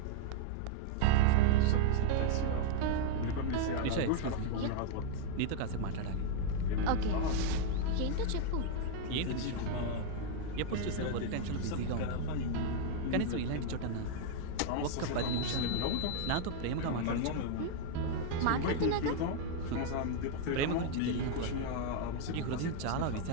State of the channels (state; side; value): different; both; correlation 0.00